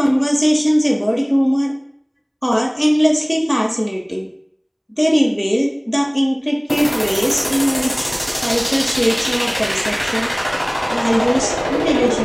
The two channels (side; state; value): both; identical; correlation 1.00